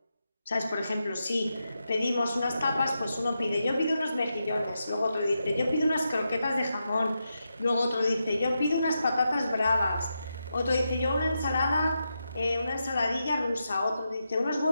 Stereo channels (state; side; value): inverted; both; correlation -0.87